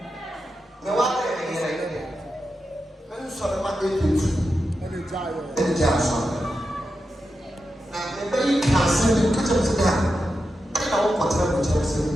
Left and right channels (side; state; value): both; normal; correlation 0.89